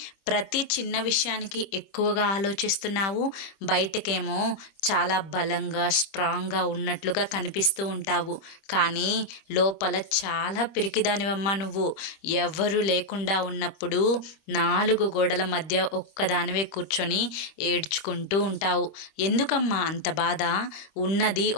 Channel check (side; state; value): right; late; 25 ms